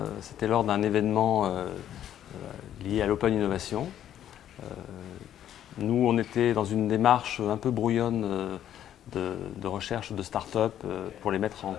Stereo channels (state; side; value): quieter; right; 10.9 dB